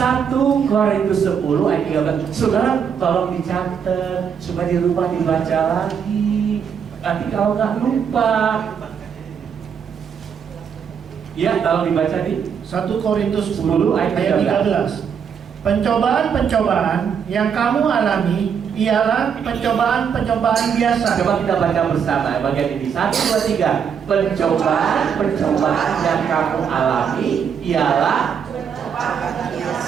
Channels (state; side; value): quieter; left; 7.3 dB